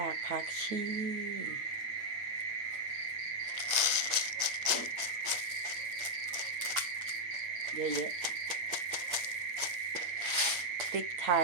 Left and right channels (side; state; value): left; late; 8.9 ms